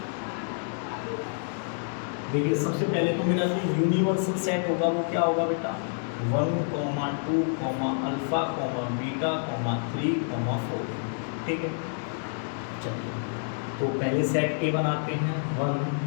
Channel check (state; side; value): silent; right; digital silence